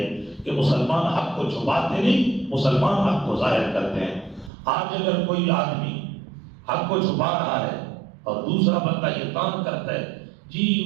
کہ مسلمان حق کو چھپاتے نہیں، مسلمان حق کو ظاہر کرتے ہیں۔ آج اگر کوئی آدمی حق کو چھپا رہا ہے اور دوسرا بندہ یہ کام کرتا ہے، جی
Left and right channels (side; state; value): left; drops out; at 4.5 s